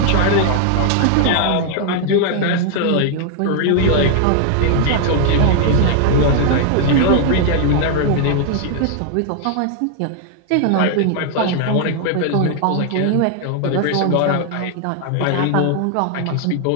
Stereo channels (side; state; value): both; different; correlation 0.00